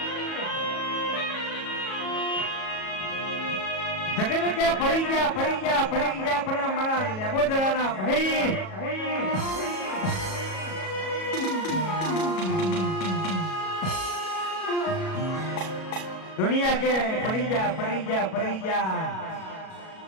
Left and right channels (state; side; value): late; right; 37 ms